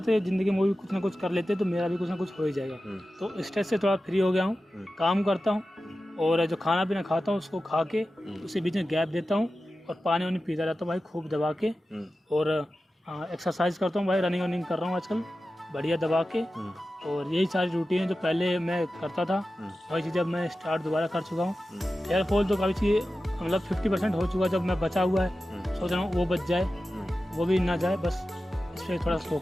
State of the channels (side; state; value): both; normal; correlation 0.93